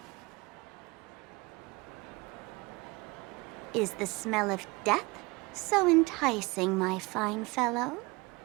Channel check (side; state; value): left; quieter; 24.7 dB